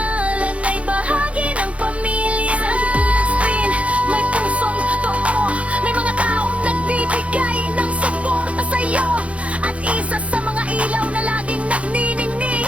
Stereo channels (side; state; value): left; late; 0.063 ms